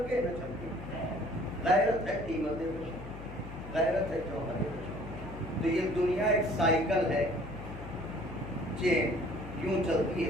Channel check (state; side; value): noise; left; hum, 12 dB below the sound